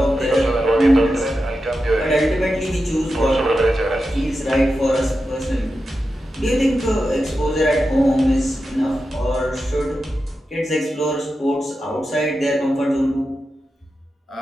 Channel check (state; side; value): normal; both; correlation 0.90